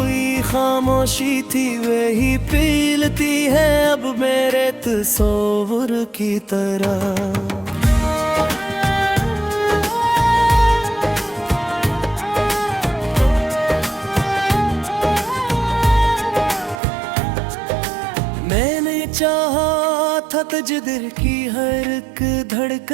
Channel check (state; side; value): drops out; left; at 16.8 s